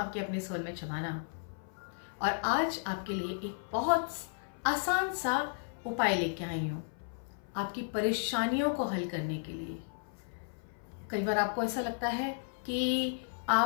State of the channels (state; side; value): silent; right; 55 dB below the other